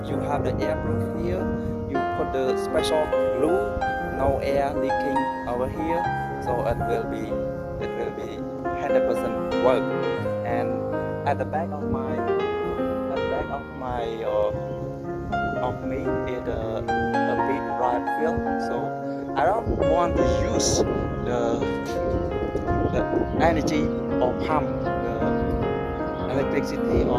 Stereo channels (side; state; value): both; identical; correlation 1.00